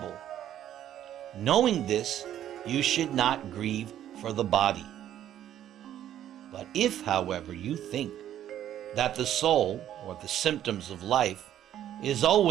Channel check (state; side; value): quieter; left; 11.3 dB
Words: Knowing this, you should not grieve for the body. But if, however, you think that the soul, or the symptoms of life, is